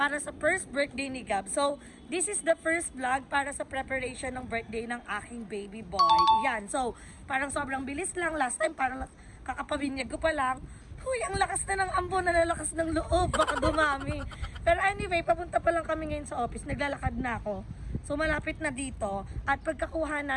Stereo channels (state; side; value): identical; both; correlation 1.00